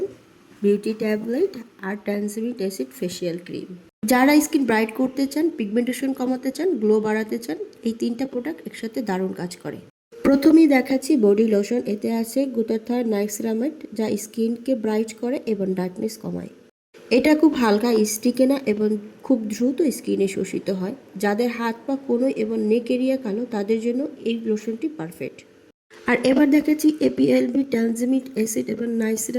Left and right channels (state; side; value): identical; both; correlation 1.00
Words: beauty tablet আর ট্যানজামিক অ্যাসিড ফেসিয়াল ক্রিম। যারা স্কিন ব্রাইট করতে চান, পিগমেন্টেশন কমাতে চান, গ্লো বাড়াতে চান, এই 3টা প্রোডাক্ট একসাথে দারুণ কাজ করে। প্রথমেই দেখাচ্ছি বডি লোশন। এতে আছে গ্লুটাথিয়ন নাইসিনামাইড, যা স্কিনকে ব্রাইট করে এবং ডার্কনেস কমায়। এটা খুব হালকা, স্টিকে না এবং খুব দ্রুত স্কিনে শোষিত হয়। যাদের হাত পা কোনোই এবং নেক এরিয়া কালো, তাদের জন্য এই লোশনটি পারফেক্ট। আর এবার দেখাচ্ছি এপিএলবি ট্যানজামিক অ্যাসিড এবং